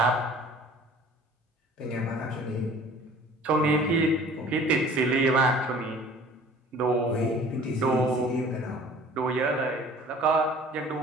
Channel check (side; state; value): both; normal; correlation 0.48